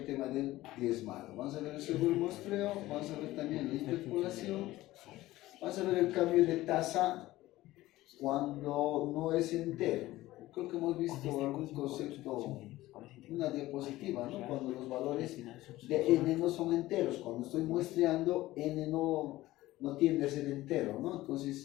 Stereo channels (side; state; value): right; quieter; 16.9 dB